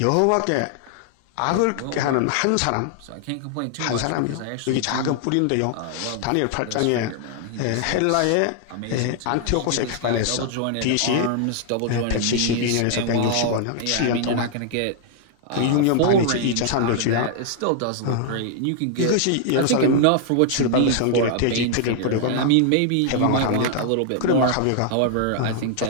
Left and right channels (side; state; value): both; different; correlation 0.00